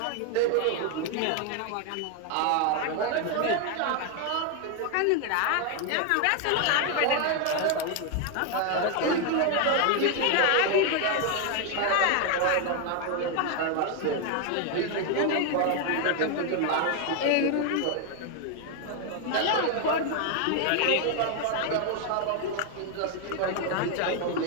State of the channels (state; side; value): different; both; correlation 0.01